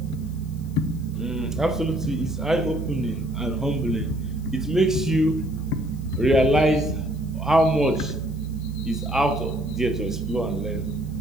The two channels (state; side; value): noise; left; hiss, 27 dB below the sound